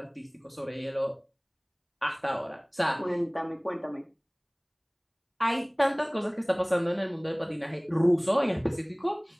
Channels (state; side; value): identical; both; correlation 1.00